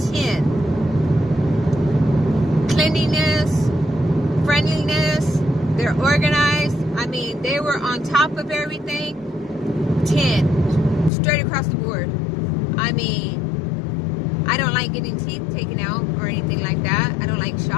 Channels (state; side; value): drops out; right; at 11.1 s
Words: 10. Cleanliness, friendliness, they're organized. I mean, they were on top of everything. 10. Straight across the board. I mean, I don't like getting teeth taken out or anything like that. I don't like